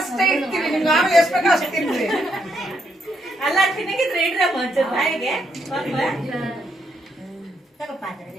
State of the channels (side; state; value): both; normal; correlation 0.76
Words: ಇಡ್ತೀವಿ, ನಿಮ್ಗೆ ನಾವು ಎಷ್ಟು ಬೇಕೋ ಅಷ್ಟು ತಿನ್ರಿ. ಅಲ್ಲ ತಿನ್ನಗಿದ್ರೆ ಇಡ್ರ ಮಂಚೂರು ಬಾಯಿಗೆ